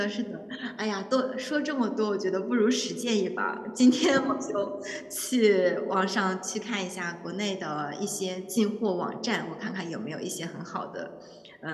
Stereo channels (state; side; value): identical; both; correlation 1.00